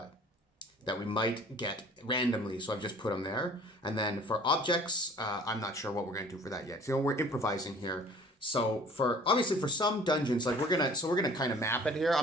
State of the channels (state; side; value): normal; both; correlation 0.50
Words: we might get randomly, so I've just put them there. And then for objects, I'm not sure what we're going to do for that yet. So we're improvising here. So obviously for some dungeons, like we're gonna kind of map it here.